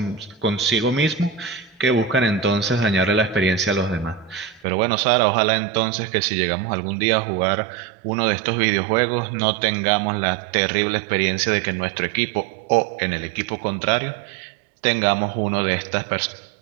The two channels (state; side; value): drops out; left; at 4.7 s